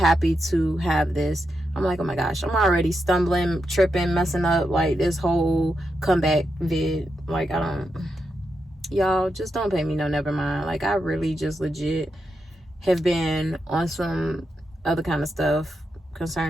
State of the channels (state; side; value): normal; both; correlation 0.85